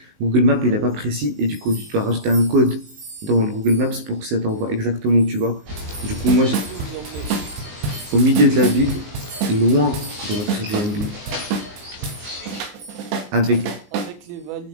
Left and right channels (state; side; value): late; left; 19 ms